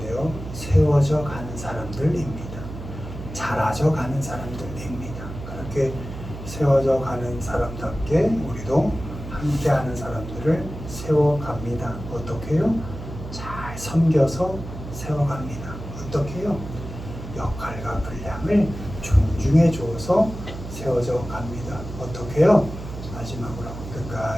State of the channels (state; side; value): noise; right; hum, 10 dB below the sound